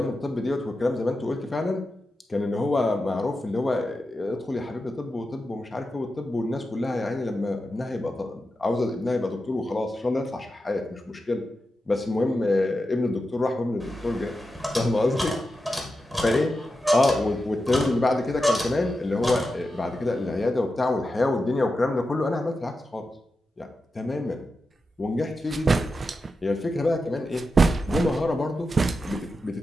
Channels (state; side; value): normal; both; correlation 0.90